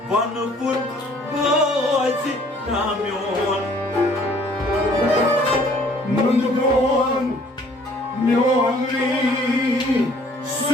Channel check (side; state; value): both; normal; correlation 0.57